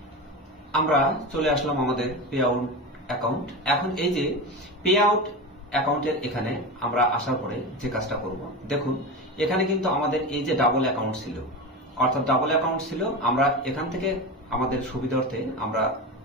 আমরা চলে আসলাম আমাদের পে আউট অ্যাকাউন্ট। এখন এই যে পে আউট অ্যাকাউন্টের এখানে আমরা আসার পরে যে কাজটা করব, দেখুন এখানে কিন্তু আমাদের এই যে ডাবল অ্যাকাউন্ট ছিল, অর্থাৎ ডাবল অ্যাকাউন্ট ছিল। আমরা এখান থেকে আমাদের সুবিধার্থে আমরা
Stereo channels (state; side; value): normal; both; correlation 0.23